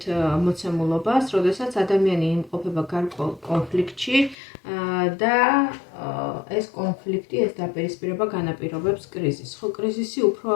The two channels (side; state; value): right; drops out; at 4.4 s